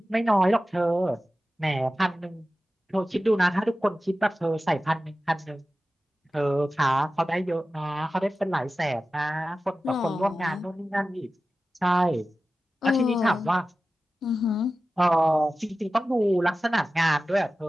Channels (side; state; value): both; normal; correlation 0.95